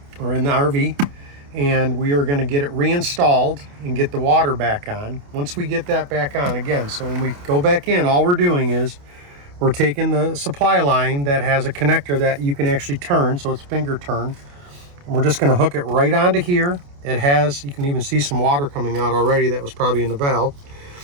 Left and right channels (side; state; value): left; late; 28 ms